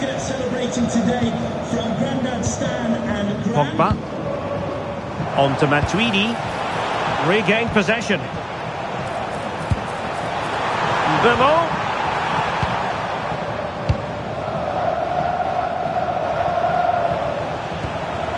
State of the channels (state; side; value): identical; both; correlation 1.00